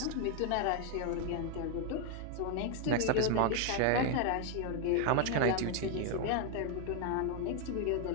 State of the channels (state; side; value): different; both; correlation 0.01